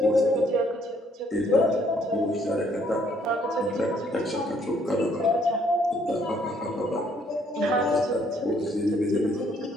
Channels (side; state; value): both; normal; correlation 0.66